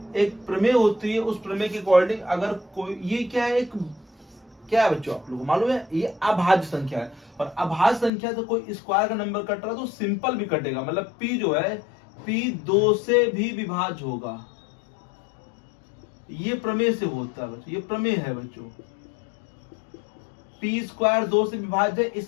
एक प्रमेय होती है, उस प्रमेय के अकॉर्डिंग अगर कोई, ये क्या है, एक क्या है बच्चों आप लोगों को मालूम है, ये अभाज्य संख्या है। और अभाज्य संख्या से कोई स्क्वायर का नंबर कट रहा है तो सिंपल भी कटेगा, मतलब p जो है p 2 से भी विभाज्य होगा। ये प्रमेय से होता है बच्चों, ये प्रमेय है बच्चों। p स्क्वायर 2 से विभाज्य है,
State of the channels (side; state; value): right; drops out; at 8.1 s